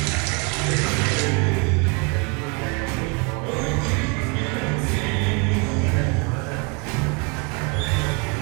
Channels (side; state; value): left; quieter; 32.2 dB